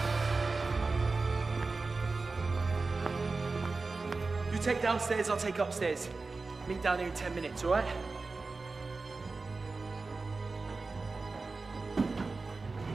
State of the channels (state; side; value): quieter; left; 3.9 dB